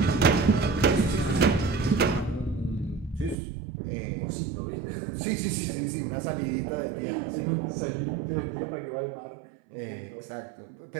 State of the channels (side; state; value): left; drops out; at 3.4 s